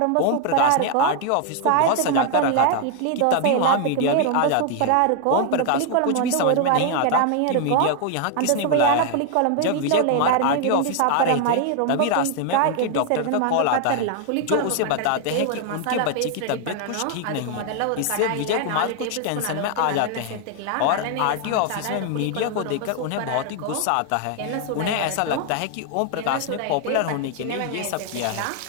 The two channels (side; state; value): both; different; correlation 0.00